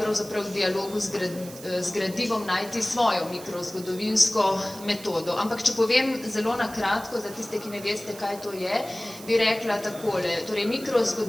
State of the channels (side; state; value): right; noise; hiss, 16 dB below the sound